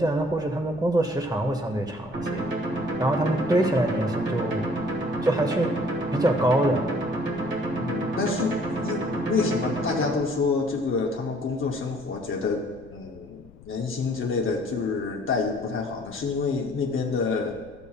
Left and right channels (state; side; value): noise; left; rumble, 21 dB below the sound